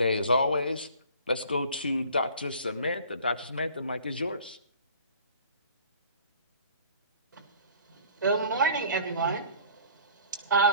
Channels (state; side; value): inverted; both; correlation -0.48